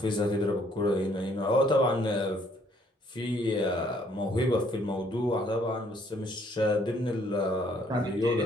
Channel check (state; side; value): normal; both; correlation 0.65